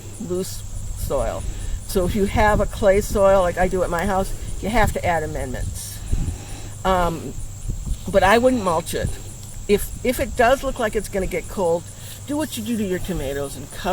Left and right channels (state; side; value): identical; both; correlation 1.00